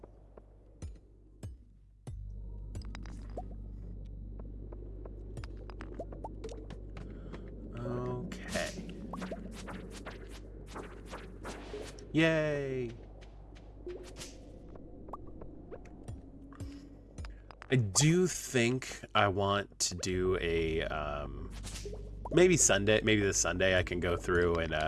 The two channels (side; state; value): both; identical; correlation 1.00